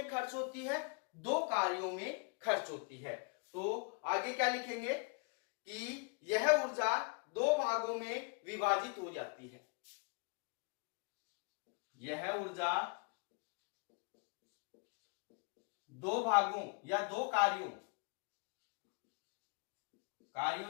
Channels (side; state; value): right; quieter; 36.1 dB